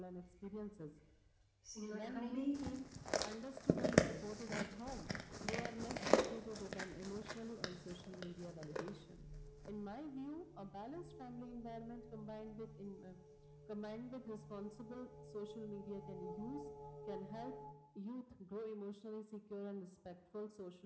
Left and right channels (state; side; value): identical; both; correlation 1.00